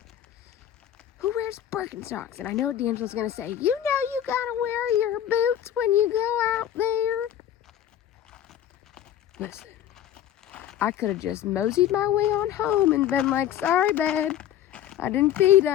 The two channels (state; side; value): quieter; right; 10.9 dB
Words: Who wears Birkenstocks? And I know what D'Angelo's gonna say. You know you gotta wear your boots when you go out there. Listen, I could have just moseyed my way on home and been like, sorry, babe, I didn't feed